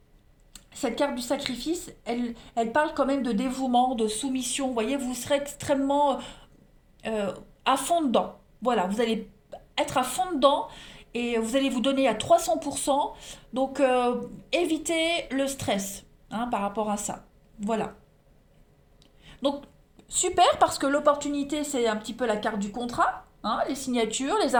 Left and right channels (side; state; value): both; identical; correlation 1.00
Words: cette carte du sacrifice, elle parle quand même de dévouement, de soumission. Vous voyez, vous serez extrêmement à fond dedans. Voilà, vous allez être à fond dedans et vous allez vous donner à 300%. Donc, évitez le stress, hein, par rapport à ça. Voilà. Donc, super, parce que l'opportunité, c'est un petit peu la carte du contrat. Hein, les signatures, les